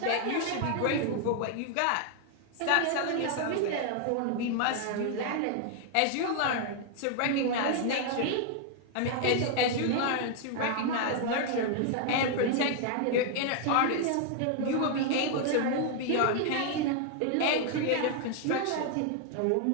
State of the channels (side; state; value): both; different; correlation 0.00